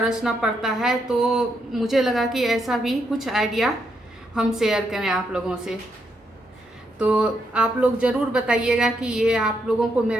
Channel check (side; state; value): both; normal; correlation 0.78